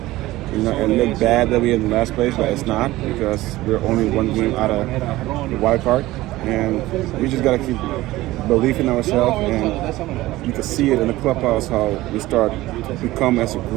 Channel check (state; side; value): quieter; left; 17.5 dB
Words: It looked bad that we're in the last place, but it's not because we're only one game out of the wild card, and we just gotta keep believing in ourselves. And you can see it in the clubhouse how we start to become as a